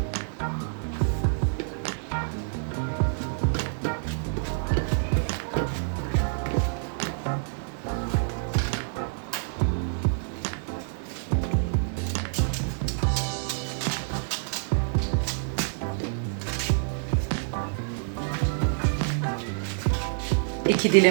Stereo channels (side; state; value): left; silent; digital silence